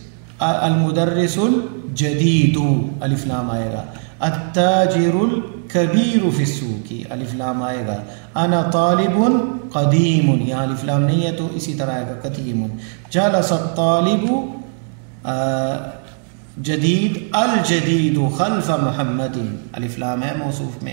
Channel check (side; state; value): left; silent; 59 dB below the other